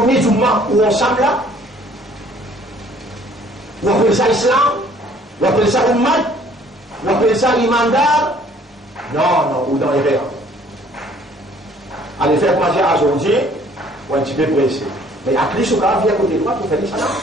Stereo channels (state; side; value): normal; both; correlation 0.57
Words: de mois où ensemble là? Ou on appelle ça islam? Ou on appelle ça ummat? Ou on appelle ça imandar? Non, ou dans les verres. Allez faire manger à aujourd'hui, ou un petit peu pressé. Mais à plus, au cas, viens à côté de moi pour faire ça.